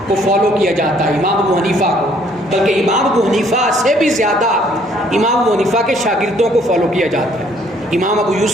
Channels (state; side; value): normal; both; correlation 0.63